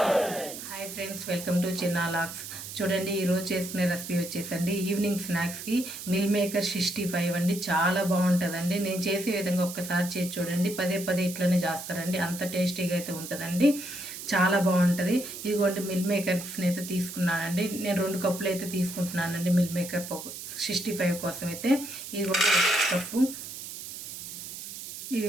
హాయ్ ఫ్రెండ్స్, వెల్కమ్ టు చిన్న లాక్స్. చూడండి, ఈరోజు చేసుకునే రెసిపీ వచ్చేసండి ఈవినింగ్ స్నాక్స్కి మిల్ మేకర్ 65 అండి. చాలా బాగుంటుందండి. నేను చేసే విధంగా ఒక్కసారి చేసి చూడండి, పదే పదే ఇట్లనే చేస్తారండి, అంత టేస్టీగా అయితే ఉంటుందండి. చాలా బాగుంటుంది. ఇదిగోండి మిల్ మేకర్స్ని అయితే తీసుకున్నానండి. నేను 2 కప్పులు అయితే తీసుకుంటున్నానండి మిల్ మేకర్ 65 కోసం అయితే. ఇదిగోండి 1 కప్పు,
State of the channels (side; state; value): right; noise; hiss, 10 dB below the sound